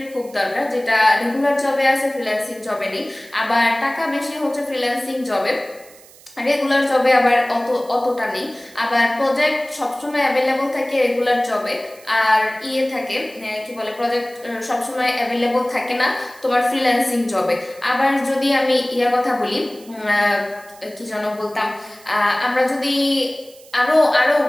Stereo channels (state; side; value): noise; right; hiss, 23 dB below the sound